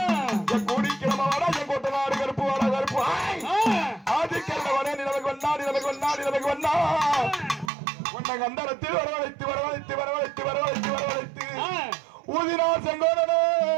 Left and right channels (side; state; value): left; drops out; at 7.7 s